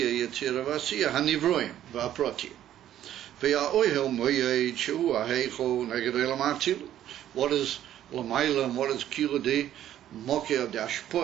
Yetzirah V'asiya Hanivroim V'aproti. V'ya Oyel Moyed Shu Aheicho Neged Oyelam Atzilut. What is Lamaila and what is Kiludi Mokia of the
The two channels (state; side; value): quieter; left; 11.7 dB